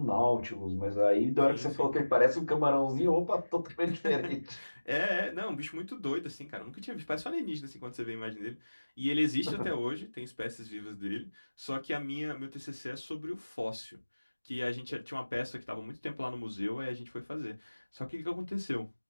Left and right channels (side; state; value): both; inverted; correlation -1.00